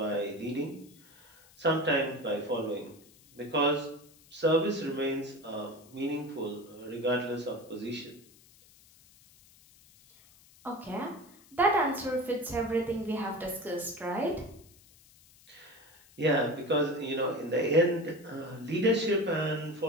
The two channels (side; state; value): left; noise; hiss, 26 dB below the sound